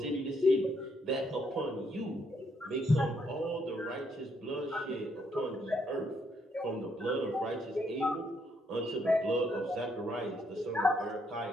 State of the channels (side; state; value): both; normal; correlation 0.73